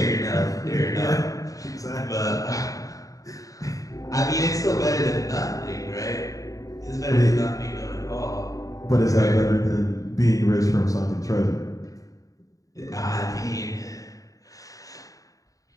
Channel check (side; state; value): right; late; 0.16 ms